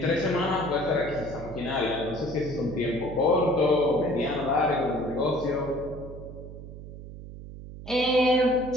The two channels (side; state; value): right; noise; hum, 13 dB below the sound